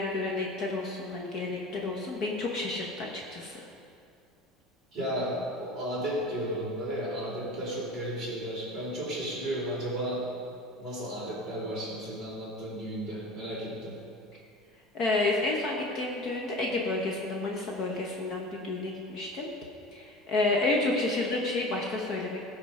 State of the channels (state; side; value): normal; both; correlation 0.36